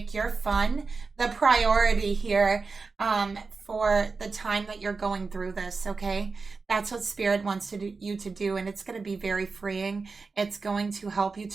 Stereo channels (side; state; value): left; quieter; 4.3 dB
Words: your fun the priority here for the time that you're going through this, okay? That's what Spirit wants you to do, and it's going to be very freeing. It's going to help you